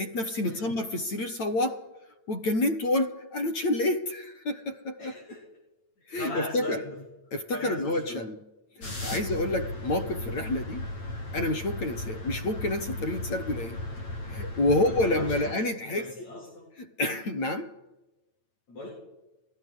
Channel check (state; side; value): late; right; 8.9 ms